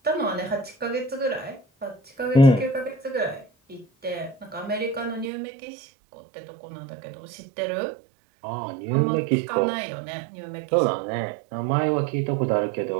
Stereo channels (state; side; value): drops out; left; at 5.3 s